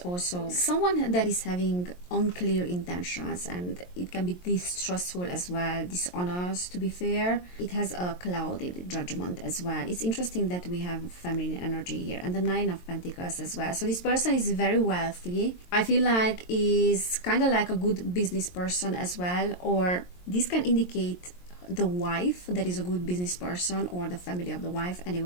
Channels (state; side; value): late; right; 22 ms